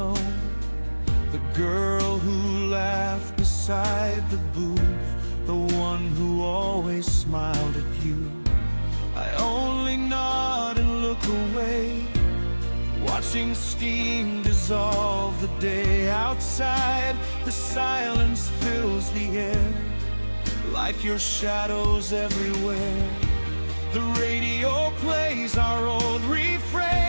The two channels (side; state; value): both; inverted; correlation -1.00